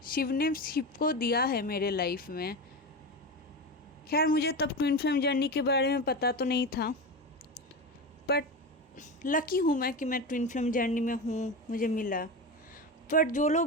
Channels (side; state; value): both; normal; correlation 0.21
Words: शिव ने शिव को दिया है मेरे लाइफ में। खैर मुझे तब ट्विन फ्लेम जर्नी के बारे में पता तो नहीं था, बट लकी हूँ मैं कि मैं ट्विन फ्लेम जर्नी में हूँ, मुझे मिला। बट जो